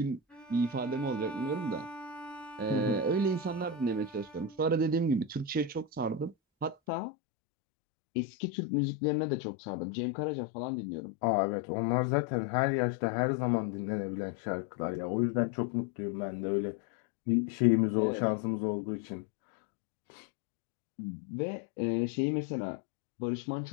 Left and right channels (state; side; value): drops out; right; at 6.8 s